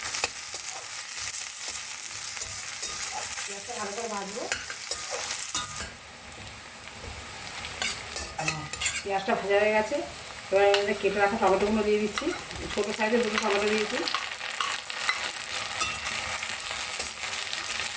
পেঁয়াজটা ভালো করে ভাজবো। পেঁয়াজটা ভাজা হয়ে গেছে। এবার এর মধ্যে কেটে রাখা টমেটোগুলো দিয়ে দিচ্ছি। ছোটো সাইজের 2টো টমেটো দিয়েছি।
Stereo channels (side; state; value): both; identical; correlation 1.00